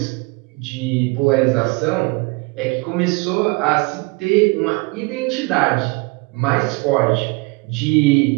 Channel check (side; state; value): left; quieter; 26.8 dB